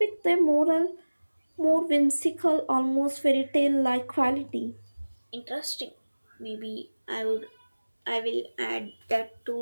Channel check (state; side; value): inverted; both; correlation -1.00